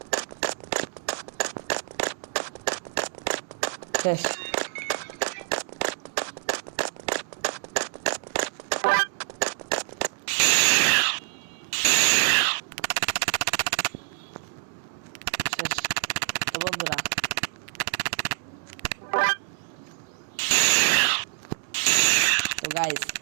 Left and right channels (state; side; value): silent; left; digital silence